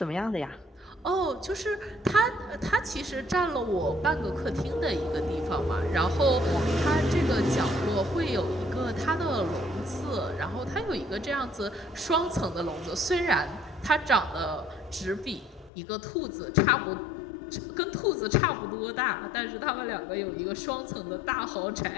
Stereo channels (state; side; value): drops out; right; at 15.7 s